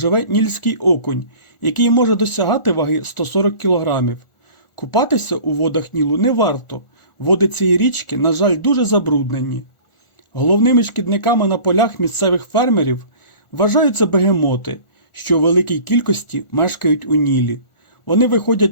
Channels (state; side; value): late; right; 1.4 ms